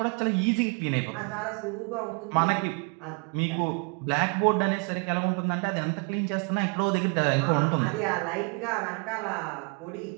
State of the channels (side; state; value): left; quieter; 33.4 dB